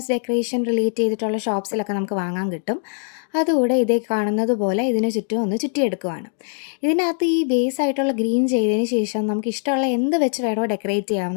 ഡെക്കറേഷൻ റിലേറ്റ് ചെയ്തിട്ടുള്ള ഷോപ്സിലൊക്കെ നമുക്ക് വാങ്ങാൻ കിട്ടും. അതുകൂടെ ഇതേ കാണുന്നത് പോലെ ഇതിന് ചുറ്റും ഒന്ന് ചുറ്റിയെടുക്കുവാണ്. ഇതിനകത്ത് ഈ ബേസ് ആയിട്ടുള്ള ഗ്രീൻ ചെയ്തതിന് ശേഷം നമുക്ക് ഇഷ്ടമുള്ള എന്ത് വെച്ച് വേണോ ഡെക്കറേറ്റ്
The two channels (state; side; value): silent; right; 64 dB below the other